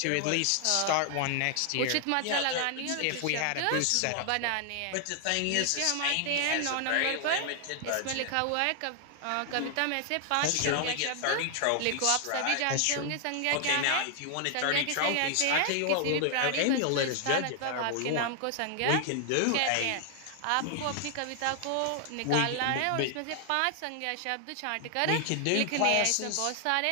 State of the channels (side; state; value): both; different; correlation 0.00